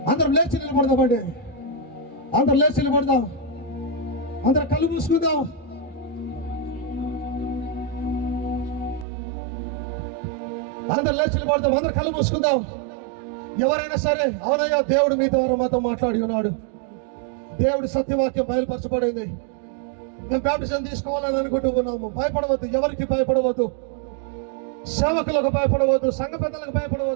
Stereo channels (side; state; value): left; drops out; at 9.1 s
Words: అందరం లేచి నిలబడదామండి. అందరం లేచి నిలబడదాం. అందరం కళ్ళు మూసుకుందాం. అందరం లేచి నిలబడదాం. అందరం కళ్ళు మూసుకుందాం. ఎవరైనా సరే, అవునయ్యా దేవుడు మీ ద్వారా మాతో మాట్లాడి ఉన్నాడు, దేవుడి సత్యవాక్యం బయలుపరచబడింది, మేము బాప్టిజం తీసుకోవాలని అనుకుంటూ ఉన్నాము. భయపడవద్దు. ఎవరికి భయపడవద్దు. సేవకులకు భయపడవద్దు. సంఘ పెద్దలకు